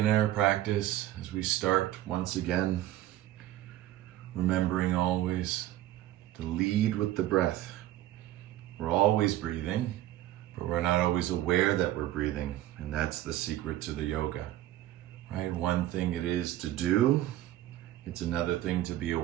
in our practice, as we start once again, remembering always to lead with the breath. We're always breathing, but we're not always aware that we're breathing. And that's the secret to the yoga, right? One thing it is to do, it's another thing to be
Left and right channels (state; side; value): quieter; left; 14.2 dB